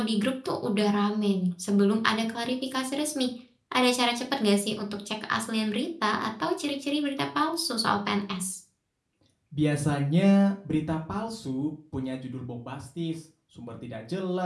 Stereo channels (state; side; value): identical; both; correlation 1.00